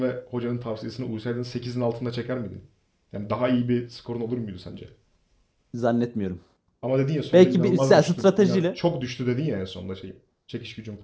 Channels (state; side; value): identical; both; correlation 1.00